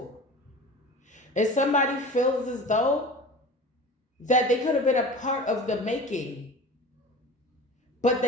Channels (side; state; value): both; normal; correlation 0.37